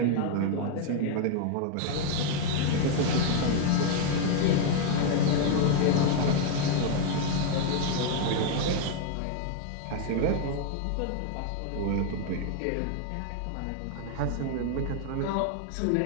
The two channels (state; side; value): different; both; correlation 0.00